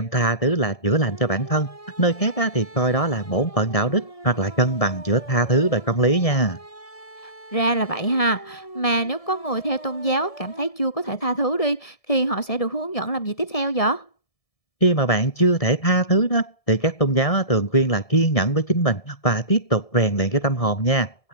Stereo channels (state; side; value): late; right; 1.7 ms